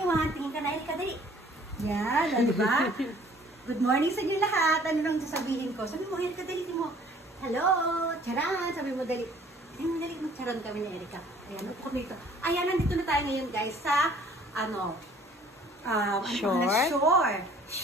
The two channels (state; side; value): normal; both; correlation 0.55